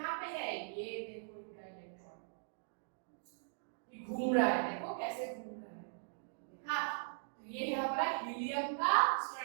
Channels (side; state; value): left; silent; digital silence